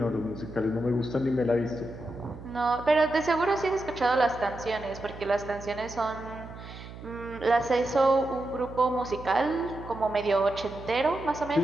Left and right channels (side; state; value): right; noise; hum, 14 dB below the sound